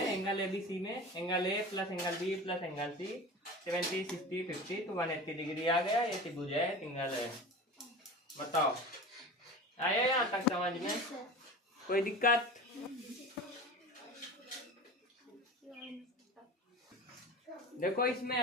एंगल ABC में, angle A plus angle B plus angle C, 70 60 50 तो 180 डिग्री आ गया। ये त्रिभुज है, ट्रायंगल है। बताओ आया यहाँ तक समझ में? कोई दिक्कत? देखो इसमें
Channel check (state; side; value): normal; both; correlation 0.33